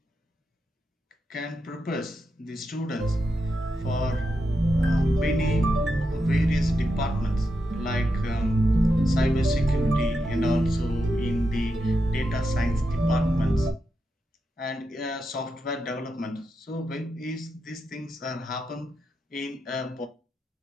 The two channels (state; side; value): normal; both; correlation 0.86